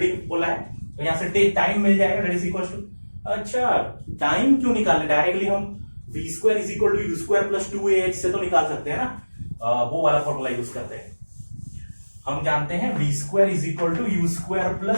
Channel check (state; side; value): inverted; both; correlation -1.00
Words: बोला है, तो यहां से टाइम मिल जाएगा, दैट इज इक्वल्स टू, अच्छा टाइम क्यों निकालने, डायरेक्टली हम v square is equal to u square plus 2ah से तो निकाल सकते हैं ना, वो वाला फॉर्मूला यूज करते हैं। हम जानते हैं v square is equal to u square